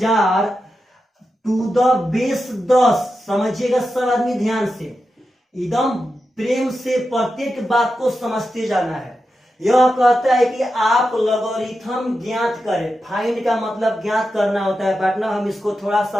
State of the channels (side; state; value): both; normal; correlation 0.90